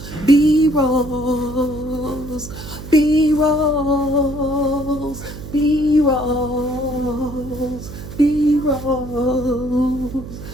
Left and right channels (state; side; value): noise; right; hum, 12 dB below the sound